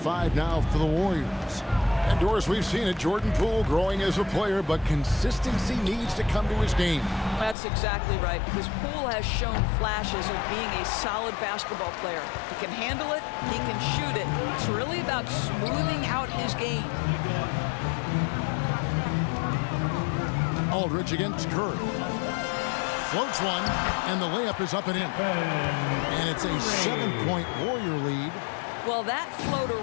now for the Warriors. And Doris, we've seen it. Jordan Poole growing as a player, but consistency needs to come to his game. That's exactly right, because Poole has shown flashes of being a solid basketball player. He can handle it, he can shoot it. It's really about smoothing out his game. Aldridge against Curry. Floats one, and the layup is up and in. And it's a 7-point Warrior lead. Well, that floater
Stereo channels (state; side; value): drops out; right; at 7.6 s